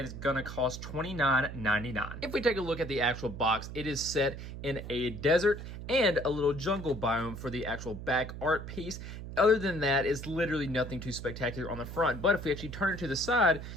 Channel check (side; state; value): right; noise; hum, 9 dB below the sound